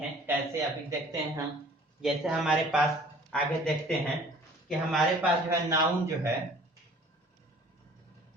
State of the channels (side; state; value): both; normal; correlation 0.51